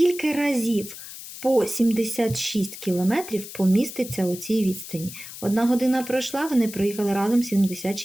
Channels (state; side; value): noise; left; hiss, 13 dB below the sound